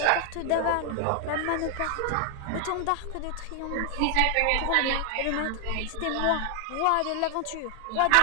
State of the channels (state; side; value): different; both; correlation 0.00